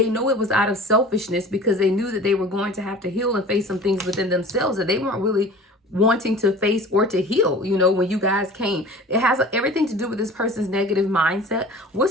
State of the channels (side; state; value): both; normal; correlation 0.41